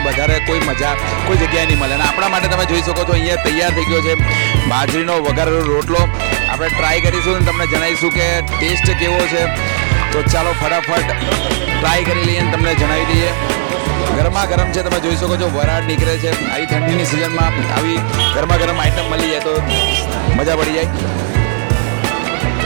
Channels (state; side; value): silent; left; digital silence